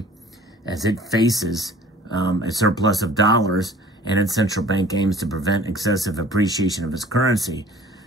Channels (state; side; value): normal; both; correlation 0.50